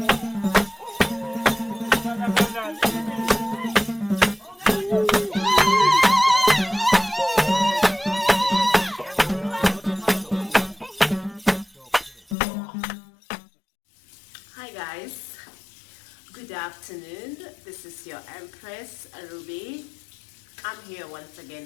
guys, good afternoon. This is your Empress Ruby. I'm here once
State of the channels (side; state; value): right; drops out; at 12.4 s